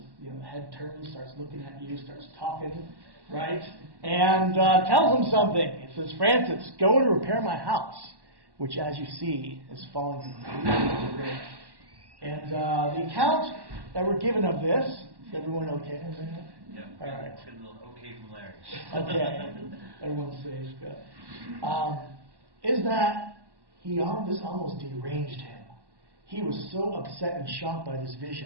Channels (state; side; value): late; left; 1.1 ms